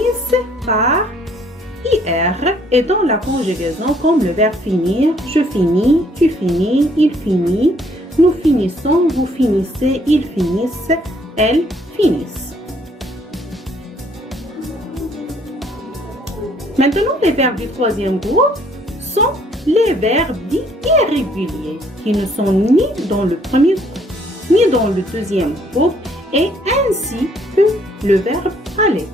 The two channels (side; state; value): both; normal; correlation 0.64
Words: par IR et dans la conjugaison comme le verbe finir, je finis, tu finis, il finit, nous finissons, vous finissez, ils finissent, elles finissent. Maintenant, les verbes du troisième groupe sont les verbes dits irréguliers qui ne sont ni dans le premier groupe ni dans le deuxième groupe et ainsi que le verbe aller.